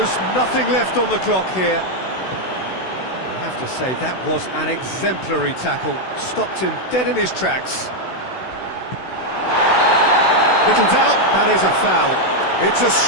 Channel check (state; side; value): late; right; 16 ms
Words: nothing left on the clock here. I have to say, that was an exemplary tackle. Stopped him dead in his tracks. Little doubt, that is a foul. It's a